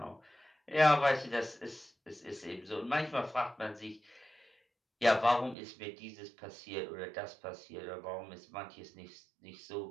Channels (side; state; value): left; drops out; at 5.6 s